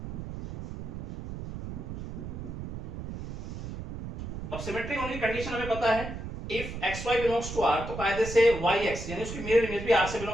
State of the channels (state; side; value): noise; right; rumble, 8 dB below the sound